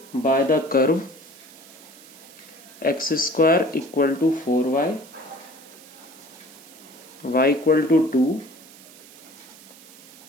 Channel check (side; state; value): right; noise; hiss, 21 dB below the sound